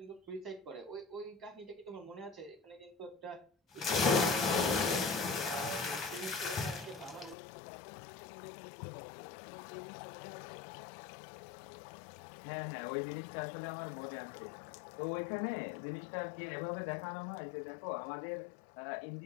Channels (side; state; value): right; drops out; at 7.4 s